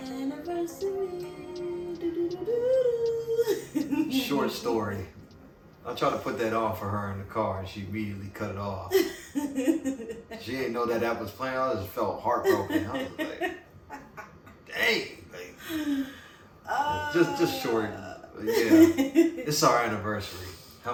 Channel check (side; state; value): both; identical; correlation 1.00